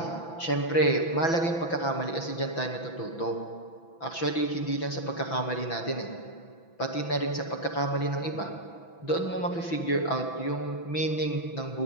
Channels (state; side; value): late; right; 6.0 ms